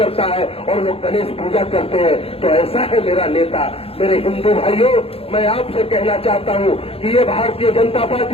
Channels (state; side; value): late; right; 0.28 ms